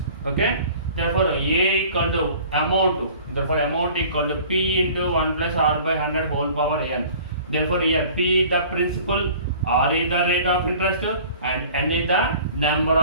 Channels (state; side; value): inverted; both; correlation -0.47